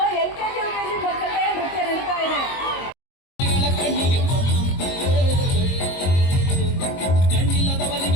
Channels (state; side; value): late; right; 22 ms